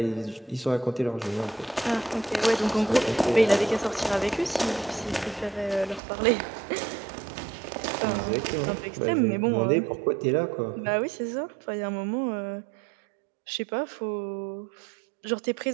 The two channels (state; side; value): drops out; left; at 6.0 s